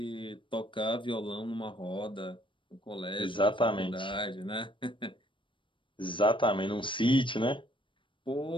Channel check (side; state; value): right; late; 0.24 ms